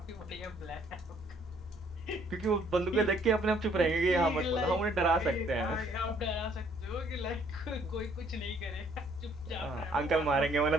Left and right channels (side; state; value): both; normal; correlation 0.63